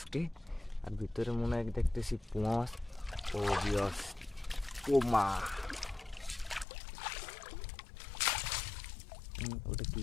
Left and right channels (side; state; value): right; drops out; at 6.7 s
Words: আর ভিতরে মনে হয় দেখতেছি পোমা মাছ। ও ভিউয়ার্স পোমা, ওটা কি